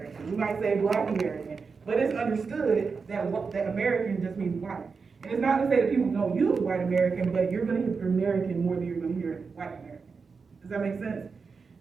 We might say Black American. But it's understood that American just means white. And it's not to say that people don't use white American, but you're going to hear American more than you're going to hear white American. Does that make sense?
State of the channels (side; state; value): left; quieter; 5.0 dB